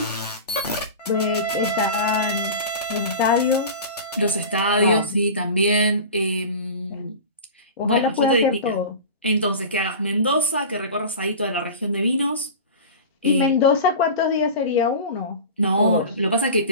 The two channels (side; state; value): both; inverted; correlation -0.33